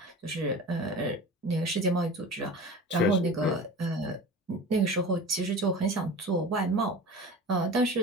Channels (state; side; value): normal; both; correlation 0.35